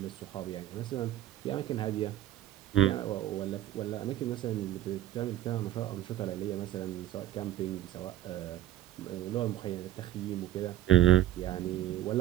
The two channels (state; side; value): quieter; left; 13.4 dB